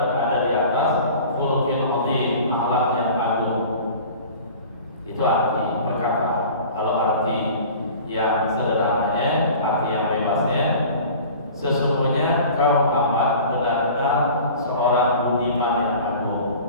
di atas khuluqin 'azim, akhlak yang agung. Itu arti perkata. Kalau arti yang sederhananya, arti yang bebasnya, sesungguhnya engkau Muhammad benar-benar seorang budiman yang agung.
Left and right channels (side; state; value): both; inverted; correlation -0.42